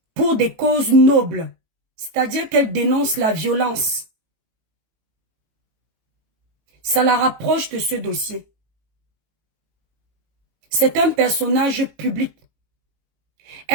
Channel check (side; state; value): left; late; 18 ms